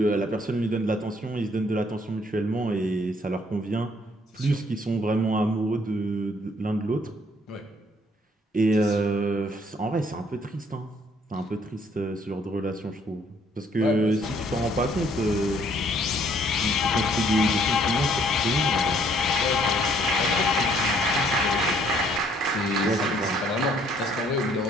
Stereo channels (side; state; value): both; normal; correlation 0.64